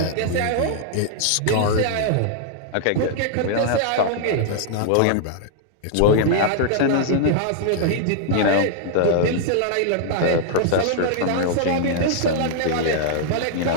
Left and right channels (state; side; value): different; both; correlation -0.01